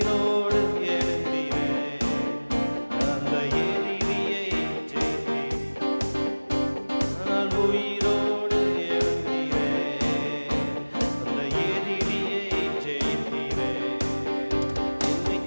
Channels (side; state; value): both; inverted; correlation -1.00